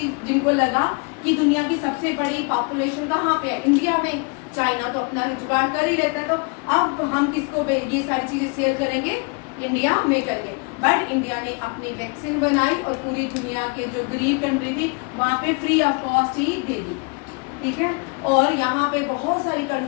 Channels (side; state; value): right; quieter; 32.8 dB